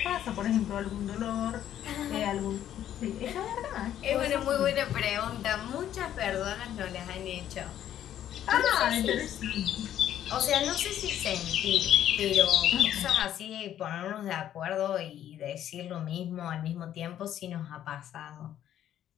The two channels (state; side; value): quieter; right; 11.1 dB